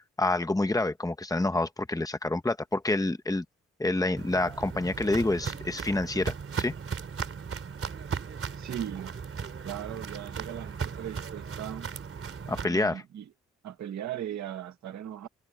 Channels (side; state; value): both; normal; correlation 0.68